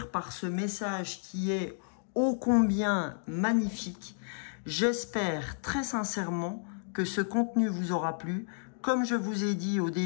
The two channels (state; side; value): silent; right; digital silence